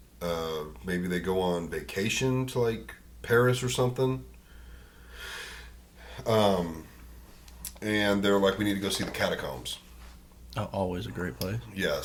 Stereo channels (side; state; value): both; identical; correlation 1.00